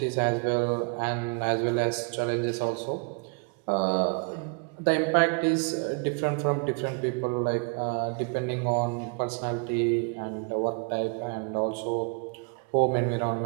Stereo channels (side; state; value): left; quieter; 34.4 dB